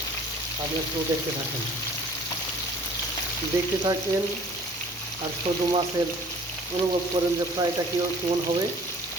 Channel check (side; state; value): both; normal; correlation 0.51